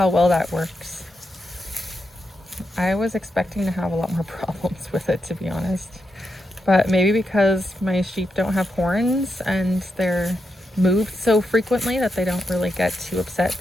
well that works. I was expecting to have a lot more problems with it, to be honest. But maybe because my sheep don't have horns and they're moved so frequently that they don't really get too upset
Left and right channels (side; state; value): both; normal; correlation 0.85